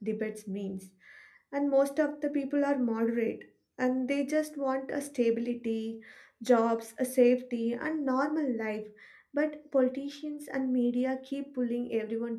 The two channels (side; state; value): both; identical; correlation 1.00